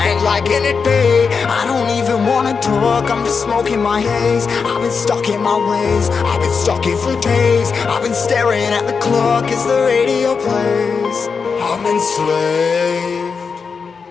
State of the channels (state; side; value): quieter; right; 5.4 dB